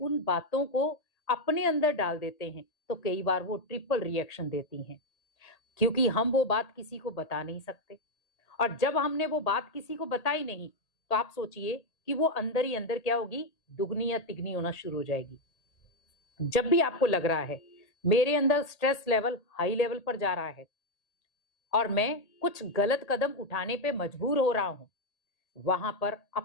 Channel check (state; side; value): late; right; 1.8 ms